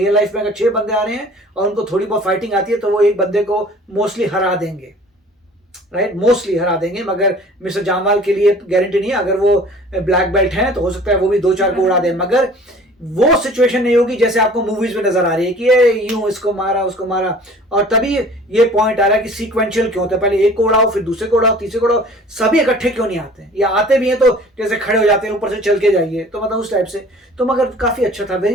लाइफ में अगर 6 बंदे आ रहे हैं और उनको थोड़ी बहुत फाइटिंग आती है तो वो एक बंदे को मोस्टली हरा देंगे, राइट, मोस्टली हरा देंगे। मगर मिस्टर जामवाल के लिए गारंटी नहीं है, अगर वो ब्लैक बेल्ट हैं तो हो सकता है वो भी 2-4 को उड़ा दे, मगर वो सिचुएशन नहीं होगी जैसे आपको मूवीज में नजर आ रही है कि ये यूं इसको मारा उसको मारा। और तभी ये पॉइंट आ रहा है कि सीक्वेंशियल क्यों होता है, पहले एक को उड़ाओ फिर दूसरे को उड़ाओ तीसरे को उड़ाओ, सभी इकट्ठे क्यों नहीं आते हैं, या आते भी हैं तो जैसे खड़े हो जाते हैं ऊपर से चल के जाइए, तो मतलब उस टाइप से। तो मगर काफी अच्छा था,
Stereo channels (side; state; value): both; normal; correlation 0.48